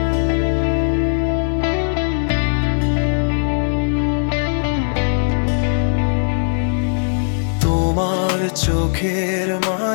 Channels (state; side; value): silent; right; digital silence